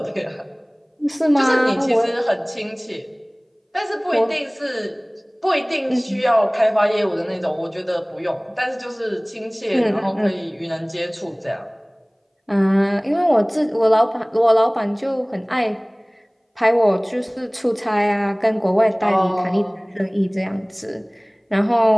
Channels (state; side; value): identical; both; correlation 1.00